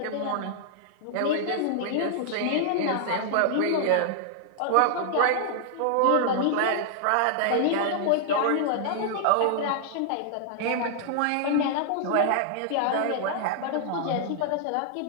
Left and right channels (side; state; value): both; different; correlation -0.01